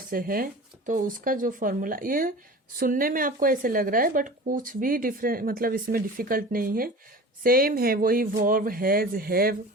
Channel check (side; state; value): both; normal; correlation 0.37